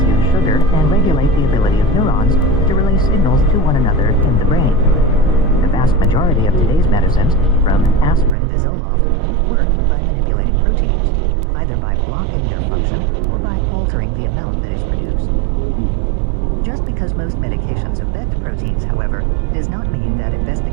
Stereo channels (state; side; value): drops out; left; at 8.3 s